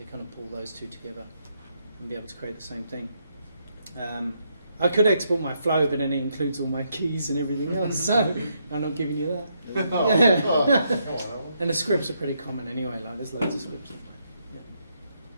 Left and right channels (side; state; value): both; inverted; correlation -0.77